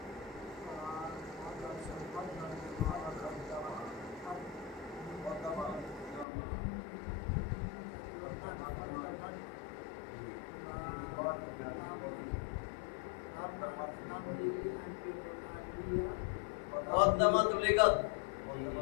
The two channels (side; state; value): right; drops out; at 6.2 s